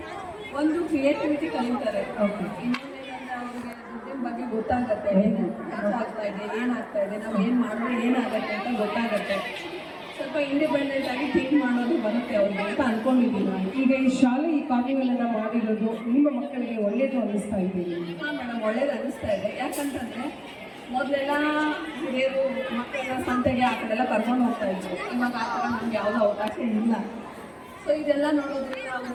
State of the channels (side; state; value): both; identical; correlation 1.00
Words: ಒಂದು ಕ್ರಿಯೇಟಿವಿಟಿ ಕಲಿತಾರೆ. ಓಕೆ. ಇನ್ನೊಂದೇನಂದ್ರೆ ಅವ್ರಿಗೆ ದುಡ್ಡಿನ ಬಗ್ಗೆ ಗೊತ್ತಾಗತ್ತೆ, ಏನು ಖರ್ಚು ಆಗ್ತಾ ಇದೆ, ಏನಾಗ್ತಾ ಇದೆ, ನಾವು ಏನು ಮಾಡಿದ್ರೆ ಏನಾಗುತ್ತೆ ಅಂತ ಗೊತ್ತಾಗತ್ತೆ. ಸ್ವಲ್ಪ ಇಂಡಿಪೆಂಡೆಂಟ್ ಆಗಿ ಥಿಂಕ್ ಮಾಡೋದು ಬರುತ್ತೆ ಅವ್ರಿಗೆ ಅಂತ ಅನ್ಕೊಂಡಿದ್ದೀನಿ ನಾನು. ಈಗ ಈ ಶಾಲೆ ಈ ಕಾರ್ನಿವಲನ್ನು ಮಾಡಿರೋದು ನಿಮ್ಮ ಮಕ್ಕಳಿಗೆ ಒಳ್ಳೆಯದು ಅನ್ನಿಸ್ತಾ ಇದೆ? ಹಾಂ ಮೇಡಮ್, ಒಳ್ಳೇದು ಅನ್ನಿಸ್ತಾ ಇದೆ. ಯಾಕಂತಂದರೆ ಮೊದಲೆಲ್ಲ ಹಿರಿಯರು ಮಕ್ಕಳೆಲ್ಲ ಸಂತೆಗೆ ಆ ಕಡೆಲ್ಲ ಕರ್ಕೊಂಡು ಹೋಗ್ತಾ ಇದ್ರು. ಇವಾಗ ಆ ಥರ ನಮ್ಗೆ ಯಾವುದೋ ಅವಕಾಶ ಇಲ್ಲ. ಸೊ ಇದೆಲ್ಲ ನೋಡೋದ್ರಿಂದ ಅವರು